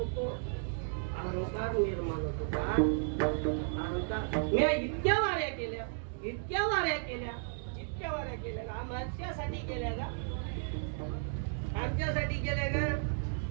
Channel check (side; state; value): left; silent; digital silence